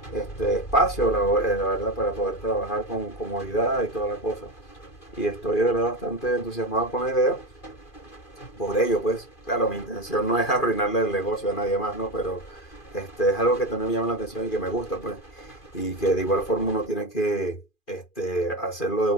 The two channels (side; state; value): right; late; 2.4 ms